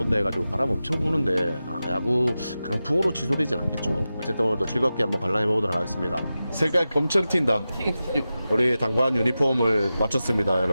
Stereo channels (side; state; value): both; inverted; correlation -0.93